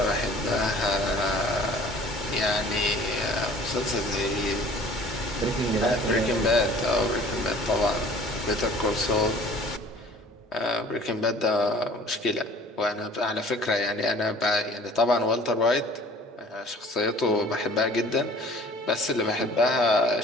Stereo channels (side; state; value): both; normal; correlation 0.49